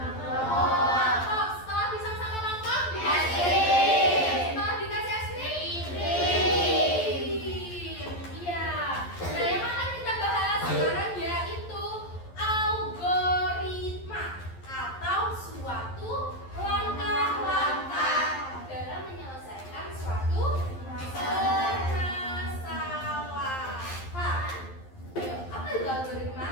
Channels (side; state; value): right; late; 11 ms